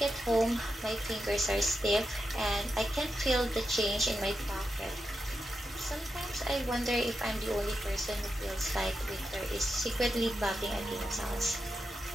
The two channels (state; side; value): normal; both; correlation 0.87